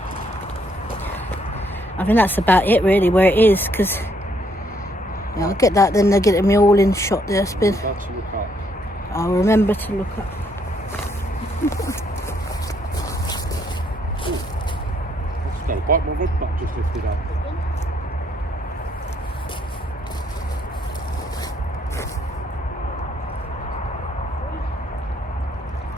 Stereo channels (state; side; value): normal; both; correlation 0.70